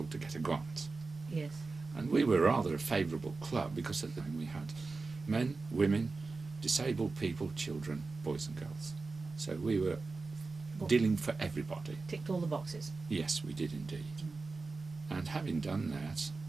to get a grant. Yes. And we were rather a favourable club because at the time we had men, women, disabled people, children, boys and girls. So we were dealing for everybody. Ticked all the boxes. Yes, we did indeed. And having done that,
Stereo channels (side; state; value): left; quieter; 4.0 dB